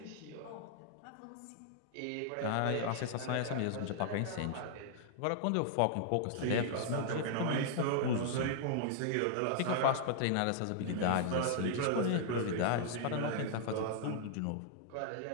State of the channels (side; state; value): both; different; correlation -0.01